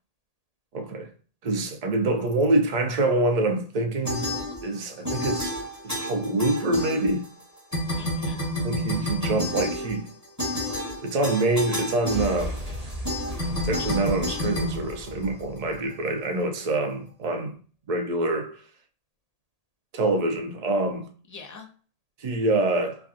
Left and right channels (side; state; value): left; late; 1.8 ms